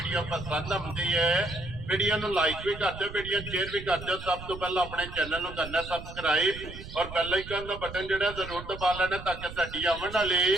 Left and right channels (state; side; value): noise; right; rumble, 12 dB below the sound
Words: पसंद आउंदी है। वीडियो नूं लाइक भी कर दो, वीडियो शेयर भी कर दो। सब तो पहले अपने चैनल नूं करना सबसक्राइब और बेल आइकन का बटन जिहड़ा जरूर दबा लेना ताकि साडी आउण वाली